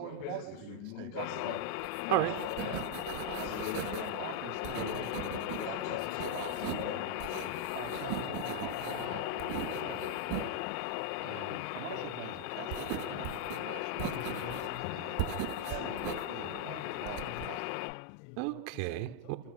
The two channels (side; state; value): both; different; correlation 0.00